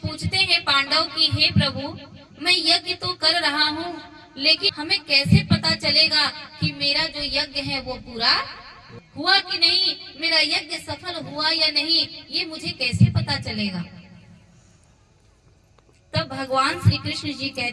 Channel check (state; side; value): identical; both; correlation 1.00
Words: हैं पांडव की, हे प्रभु, मैं यज्ञ तो कर रहा हूँ, लेकिन हमें कैसे पता चलेगा कि मेरा जो यज्ञ है वो पूरा हुआ कि नहीं, मेरा यज्ञ सफल हुआ या नहीं, ये मुझे कैसे पता चलेगा? तब भगवान श्री कृष्ण जी